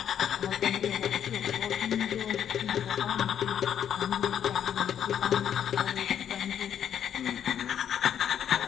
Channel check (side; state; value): right; quieter; 9.3 dB